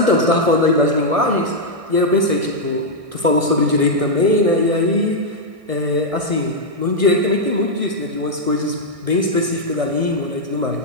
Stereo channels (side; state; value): left; late; 1.6 ms